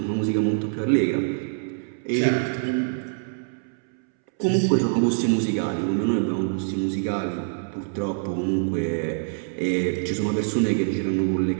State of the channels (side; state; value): left; silent; 62 dB below the other